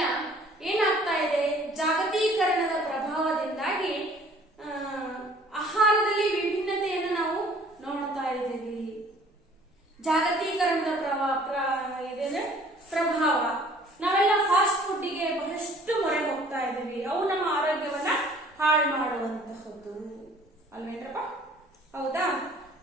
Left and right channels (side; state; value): both; normal; correlation 0.54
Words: ಏನಾಗ್ತಾ ಇದೆ, ಜಾಗತೀಕರಣದ ಪ್ರಭಾವದಿಂದಾಗಿ ಆಹಾರದಲ್ಲಿ ವಿಭಿನ್ನತೆಯನ್ನು ನಾವು ನೋಡ್ತಾ ಇದ್ದೀವಿ. ಜಾಗತೀಕರಣದ ಪ್ರಭಾವ ನಾವೆಲ್ಲ ಫಾಸ್ಟ್ ಫುಡ್ಗೆ ಬಹಳಷ್ಟು ಮೊರೆ ಹೋಗ್ತಾ ಇದ್ದೀವಿ. ಅವು ನಮ್ಮ ಆರೋಗ್ಯವನ್ನ ಹಾಳು ಮಾಡುವಂತಹದ್ದು ಅಲ್ವೇನ್ರಪ್ಪ? ಹೌದಾ?